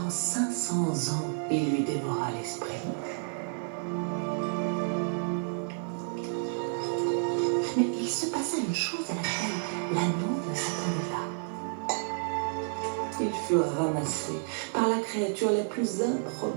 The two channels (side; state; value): left; silent; digital silence